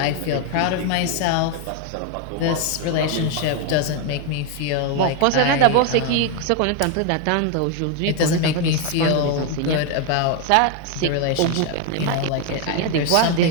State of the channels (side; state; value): both; different; correlation 0.01